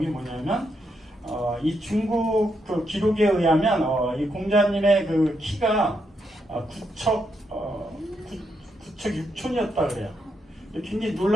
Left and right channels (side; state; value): both; normal; correlation 0.80